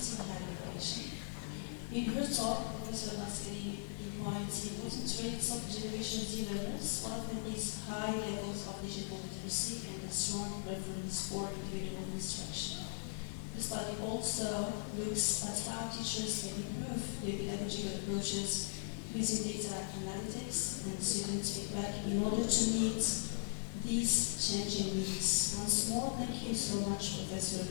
in higher education. In her talk, Professor Nasseri points the important traits of Generation Z learners. One of them is high levels of digital literacy and a strong preference for individual instruction. The study also looks at how teachers can improve their pedagogical approaches using data analytics and student feedback in order to meet these changing needs. Once more, thank you so much, Professor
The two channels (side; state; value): right; silent; 52 dB below the other